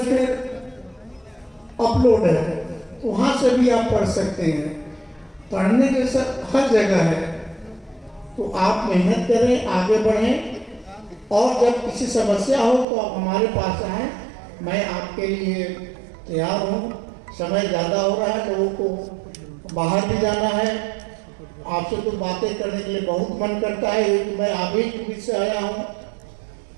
अपलोड है, वहाँ से भी आप पढ़ सकते हैं। पढ़ने के साथ हर जगह है, तो आप मेहनत करें, आगे बढ़ें, और जब किसी समस्या हो तो आप हमारे पास आएँ, मैं आपके लिए तैयार हूँ। समय ज़्यादा हो रहा है, लोगों को बाहर भी जाना है, आपसे तो बातें करने के लिए बहुत मन करता है, कि मैं आप ही के बीच से आया हूँ,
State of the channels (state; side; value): drops out; left; at 12.9 s